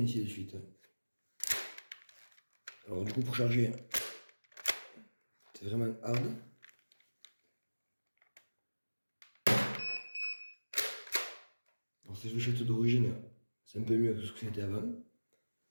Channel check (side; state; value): both; inverted; correlation -1.00